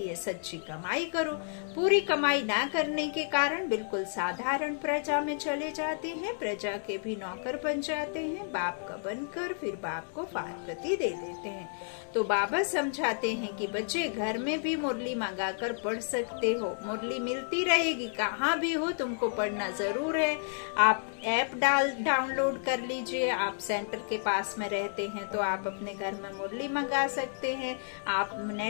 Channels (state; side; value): silent; right; digital silence